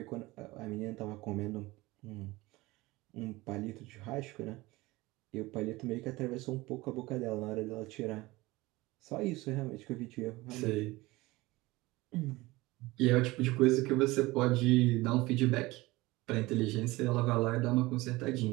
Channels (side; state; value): left; quieter; 20.6 dB